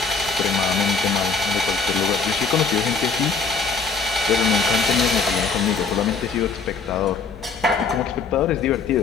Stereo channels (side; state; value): right; quieter; 4.7 dB